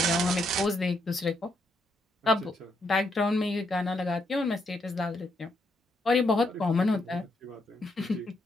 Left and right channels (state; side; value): normal; both; correlation 0.78